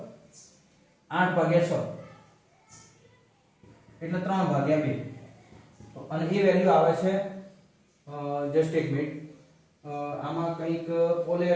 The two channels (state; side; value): identical; both; correlation 1.00